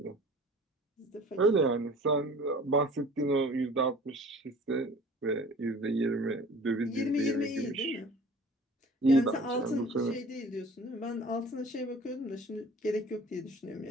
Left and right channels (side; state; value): both; normal; correlation 0.46